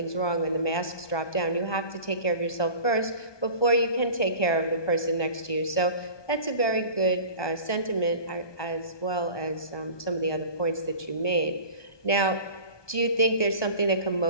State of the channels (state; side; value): late; right; 1.2 ms